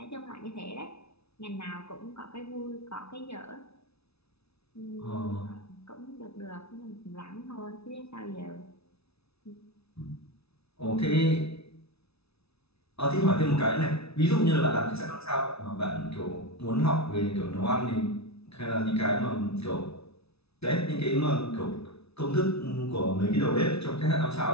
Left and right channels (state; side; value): late; right; 0.79 ms